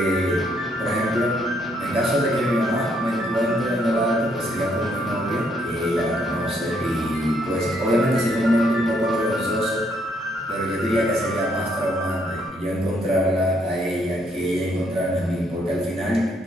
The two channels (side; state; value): both; normal; correlation 0.71